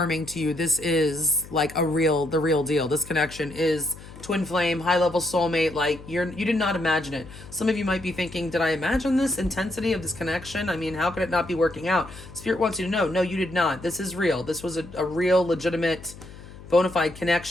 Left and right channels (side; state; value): left; noise; hum, 17 dB below the sound